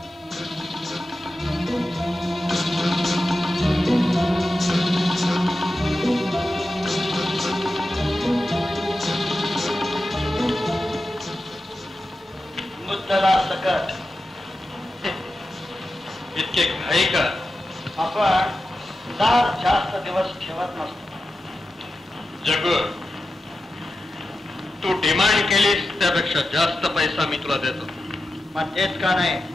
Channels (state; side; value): normal; both; correlation 0.92